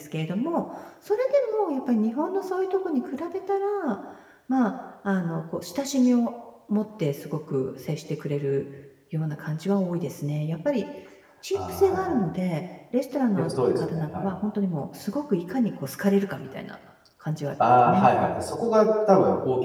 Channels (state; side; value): identical; both; correlation 1.00